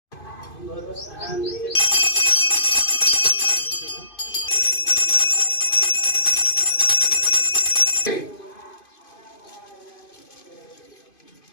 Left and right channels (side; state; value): right; late; 2.5 ms